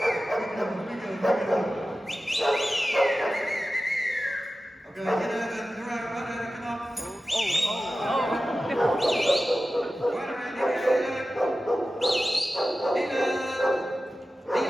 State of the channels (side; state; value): both; normal; correlation 0.94